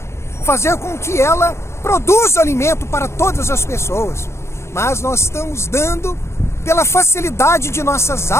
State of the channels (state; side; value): late; right; 0.13 ms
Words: Fazer com que ela produza alimento para todas as pessoas. Mas nós estamos dando, pela facilidade de nossas